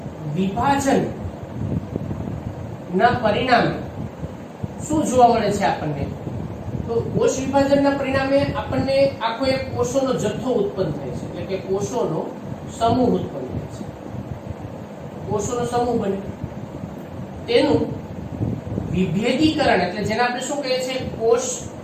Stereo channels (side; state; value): both; identical; correlation 1.00